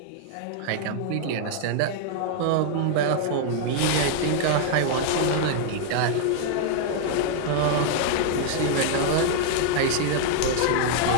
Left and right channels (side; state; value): both; different; correlation 0.00